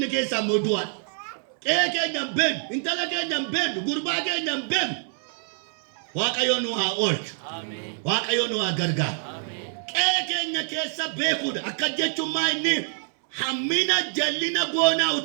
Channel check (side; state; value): left; silent; 61 dB below the other